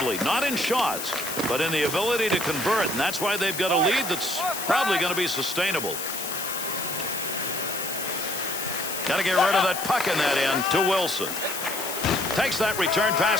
Not in shots, but in the ability to convert. And that's why they've got a lead that's probably going to be sustainable. Got to get rid of that puck in that end to Wilson. Takes that return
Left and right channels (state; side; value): noise; left; hiss, 6 dB below the sound